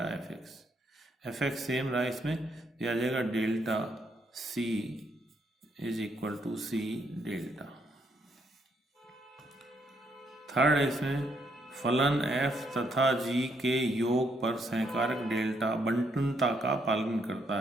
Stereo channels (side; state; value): both; normal; correlation 0.74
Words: F x. F X same रहा इसमें, ये आ जाएगा delta C is equal to C delta. Third है इसमें फलन एफ तथा जी के योग पर सहकारक डेल्टा बंटनता का पालन करता